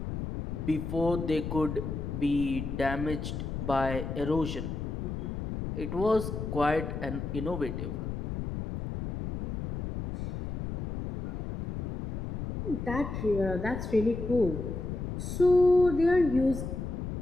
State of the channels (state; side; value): noise; left; rumble, 5 dB below the sound